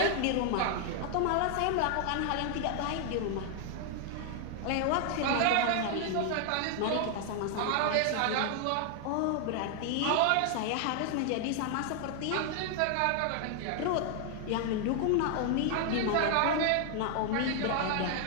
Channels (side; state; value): both; different; correlation 0.00